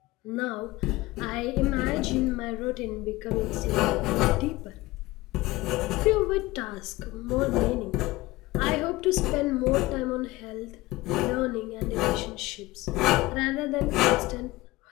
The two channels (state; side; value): quieter; right; 19.6 dB